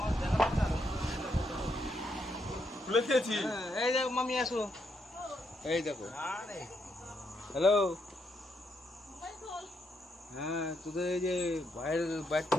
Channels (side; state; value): both; normal; correlation 0.78